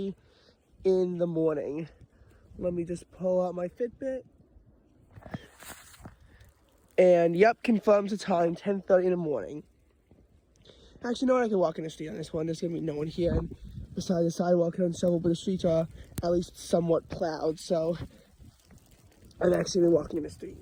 in the morning. Let me just pull out my Fitbit. And yep, confirms the time, 10:30 in the morning. Actually, no one I can walk in the street on this one. There's gonna be no one here. And besides the sidewalk and several, but the streets are at least somewhat plowed. So I'm actually walking in the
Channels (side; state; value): both; identical; correlation 1.00